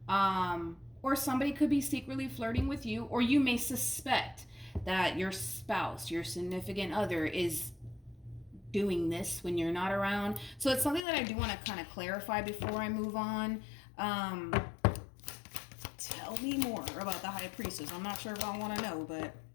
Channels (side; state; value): right; drops out; at 11.1 s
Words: or somebody could be secretly flirting with you, or you may suspect that your spouse, your significant other, is doing this when you're not around. So it's something that I do want to kind of clarify before I move on. Tell me more about the High Priestess. I'm not sure if I want to know, but